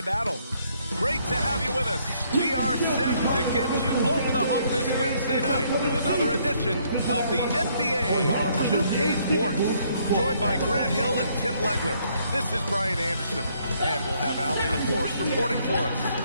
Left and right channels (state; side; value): inverted; both; correlation -0.68